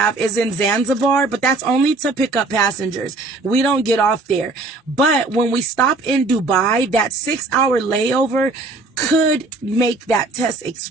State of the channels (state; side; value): quieter; left; 3.4 dB